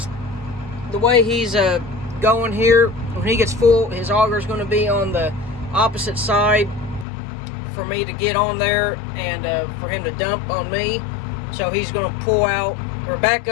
the way he's going here, when he gets full, his auger is going to be on the opposite side for me to get on there and for him to dump on me. So he's going to pull out or back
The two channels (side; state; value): right; drops out; at 7.1 s